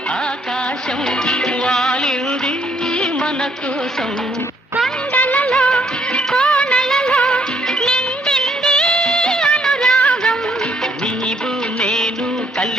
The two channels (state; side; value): normal; both; correlation 0.67